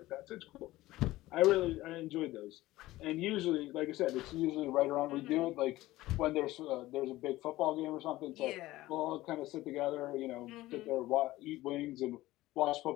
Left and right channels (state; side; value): quieter; right; 17.2 dB